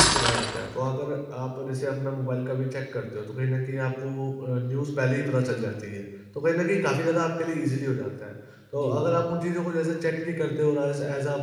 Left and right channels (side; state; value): both; identical; correlation 1.00